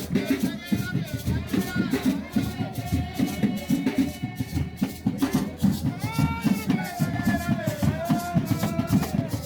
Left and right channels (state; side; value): identical; both; correlation 1.00